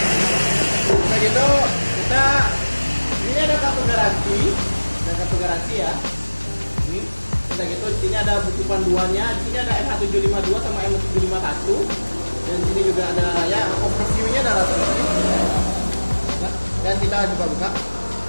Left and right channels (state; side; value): inverted; both; correlation -1.00